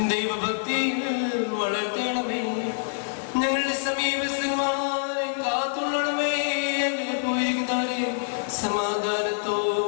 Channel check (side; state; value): right; silent; digital silence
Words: ദൈവഭക്തിയിൽ വളർത്തണമേ. ഞങ്ങളുടെ സമീപസ്ഥന്മാരെ കാത്തുകൊള്ളണമേ. അങ്ങനെ പോയിരിക്കുന്നവരെ